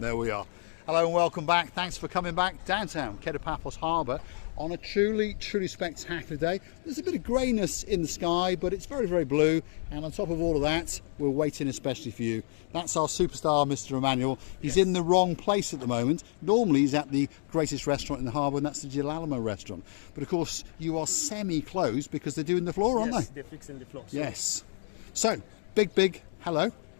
we are. Hello and welcome back. Thanks for coming back downtown Kato Paphos Harbour on a truly spectacular day. There's a bit of greyness in the sky, but it's very, very blue. And on top of all of that, we're waiting especially for you. That's our superstar, Mr. Emmanuel. He's in the wrong place at the moment. Normally he's at the greatest restaurant in the harbour, and that's the Girolamo restaurant. But of course, you are semi-closed because they're doing the floor, aren't they? They're fixing the floor. So. Yes. So, big hello.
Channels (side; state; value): right; silent; digital silence